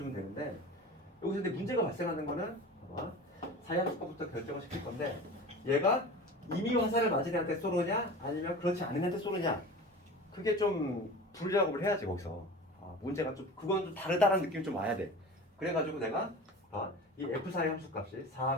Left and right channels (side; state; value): both; normal; correlation 0.35